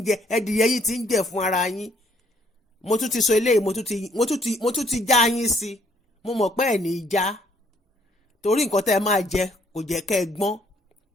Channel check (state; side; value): normal; both; correlation 0.66